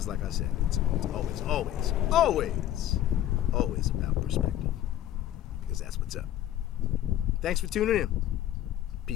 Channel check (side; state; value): right; quieter; 12.4 dB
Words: like I said, it's always about perspective. Because that's what's up. Thanks for tuning in.